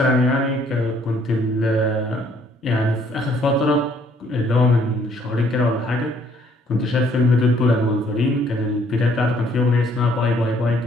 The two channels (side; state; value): both; normal; correlation 0.64